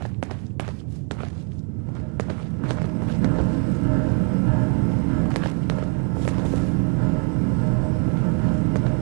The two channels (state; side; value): quieter; left; 39.5 dB